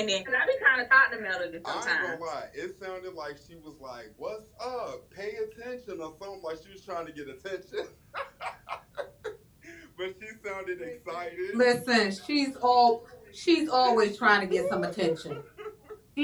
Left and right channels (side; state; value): both; identical; correlation 1.00